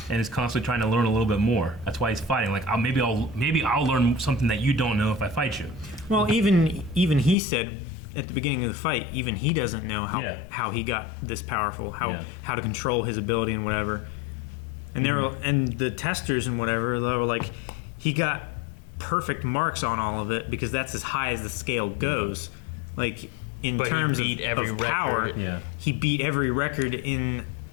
and is constantly trying to learn a little bit more. That's why he's fighting. Like maybe I'll learn something that you don't know if I fight you. Well, even he said at the beginning of the fight, even he doesn't know how he got this powerful, how to control his ability and whatever. And and the testers and whatever, they were like, he got perfect marks on all of it because that's as high as the scale goes. Like in But he terms beat every of power, record. he beat every record in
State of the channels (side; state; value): right; drops out; at 7.4 s